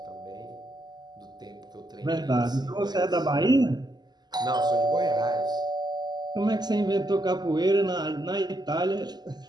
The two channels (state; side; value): late; left; 0.20 ms